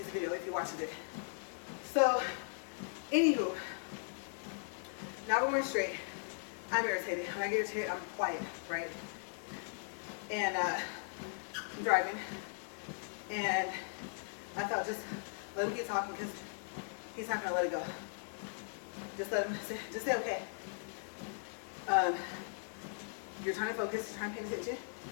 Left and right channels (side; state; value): right; silent; 52 dB below the other